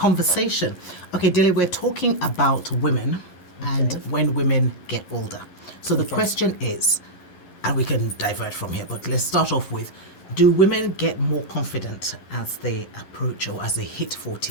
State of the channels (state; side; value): late; right; 11 ms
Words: Okay, Dele, we're talking about women and when women get older. So the question is, and we can divert from here, but let's start off with, do women get more confident as they approach or as they hit